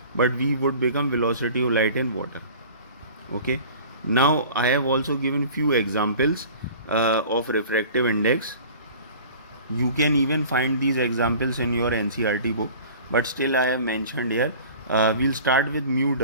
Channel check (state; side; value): inverted; both; correlation -0.44